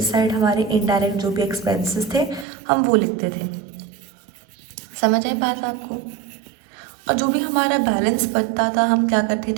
साइड हमारे इनडायरेक्ट जो भी एक्सपेंसेस थे हम वो लिखते थे। समझ आई बात आपको? और जो भी हमारा बैलेंस बचता था हम क्या करते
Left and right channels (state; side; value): drops out; left; at 2.5 s